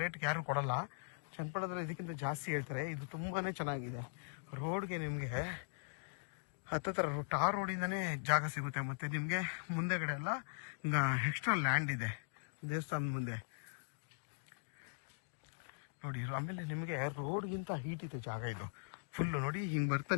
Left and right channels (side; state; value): right; silent; digital silence